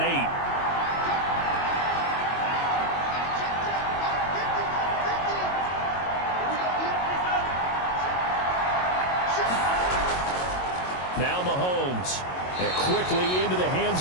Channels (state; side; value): late; right; 22 ms